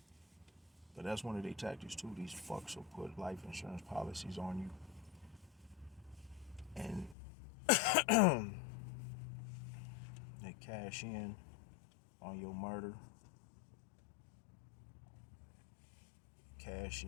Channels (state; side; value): drops out; right; at 7.2 s